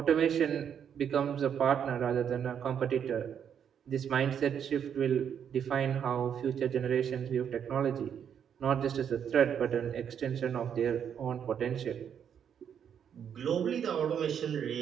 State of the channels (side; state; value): left; quieter; 8.3 dB